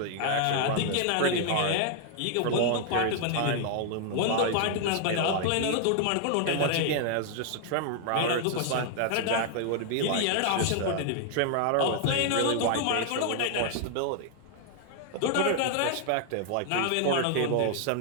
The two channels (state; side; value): different; both; correlation 0.00